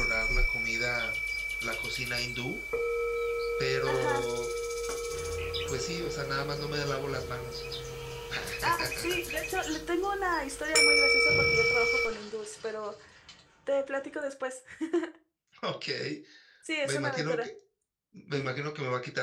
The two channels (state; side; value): identical; both; correlation 1.00